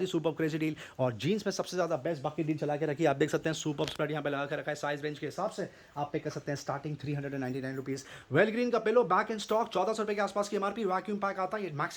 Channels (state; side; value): identical; both; correlation 1.00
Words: ही सुपर क्रेजी डील। और जीन्स में सबसे ज़्यादा बेस्ट बाकी डील चला के रखी है, आप देख सकते हैं सुपर स्प्रेड यहाँ पे लगा के रखा है। साइज रेंज के हिसाब से आप पे कर सकते हैं स्टार्टिंग 399 रुपीज़। वेल ग्रीन का पिलो बैक इन स्टॉक 1,400 रुपये के आसपास की MRP। वैक्यूम पैक आता है, ये